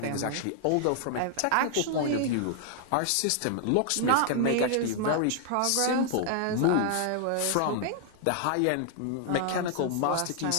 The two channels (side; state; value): both; different; correlation 0.00